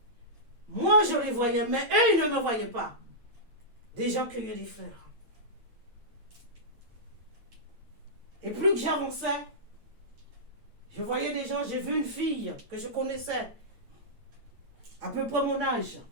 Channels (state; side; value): late; left; 8.9 ms